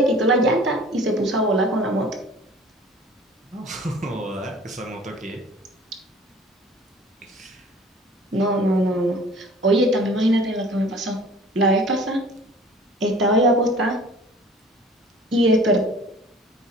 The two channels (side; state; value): both; normal; correlation 0.47